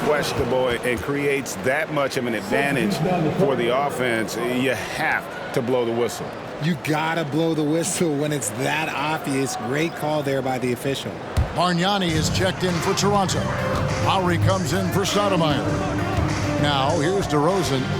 and creates that much of an advantage for the offense, you have to blow the whistle. You gotta blow the whistle when it's that obvious. Great call there by the official. Bargnani is checked in for Toronto. Lowry comes in for Stoudemire. Now here's DeRozan.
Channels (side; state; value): both; identical; correlation 1.00